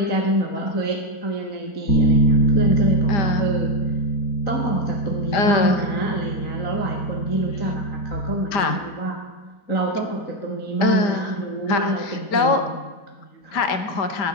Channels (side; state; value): right; late; 5.0 ms